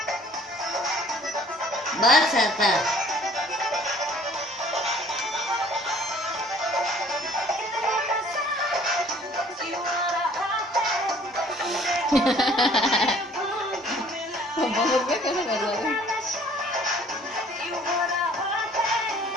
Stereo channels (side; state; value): both; normal; correlation 0.55